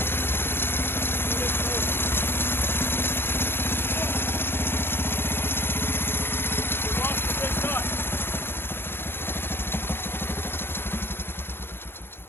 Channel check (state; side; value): late; right; 0.11 ms